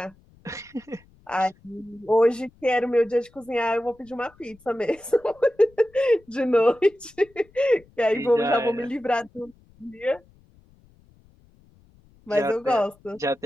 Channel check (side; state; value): left; noise; rumble, 30 dB below the sound